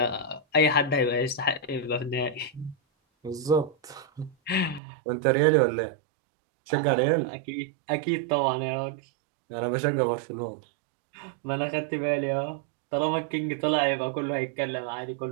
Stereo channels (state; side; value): drops out; left; at 4.8 s